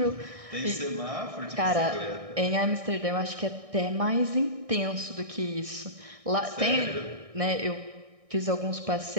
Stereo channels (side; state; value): left; late; 1.6 ms